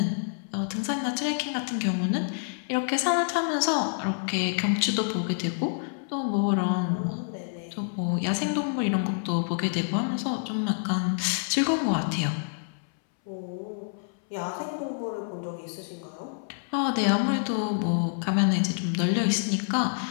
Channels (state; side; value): silent; right; 60 dB below the other